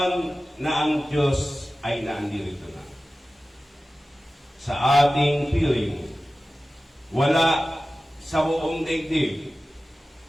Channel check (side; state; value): both; normal; correlation 0.96